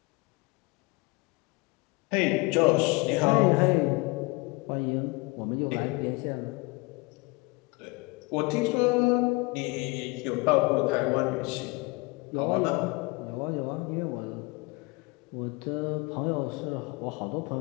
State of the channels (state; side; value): quieter; right; 25.9 dB